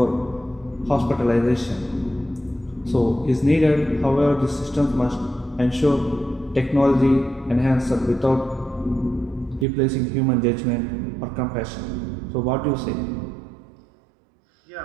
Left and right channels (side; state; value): left; drops out; at 9.7 s